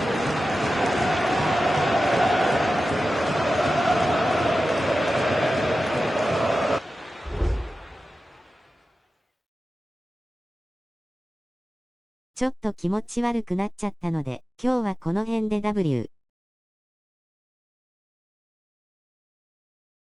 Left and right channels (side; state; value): both; normal; correlation 0.93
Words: ちょっと気持ち悪くなっちゃったので、今日はこの辺で W。